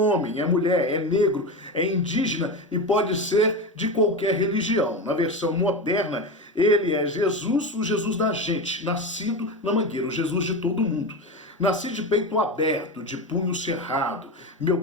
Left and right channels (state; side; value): normal; both; correlation 0.20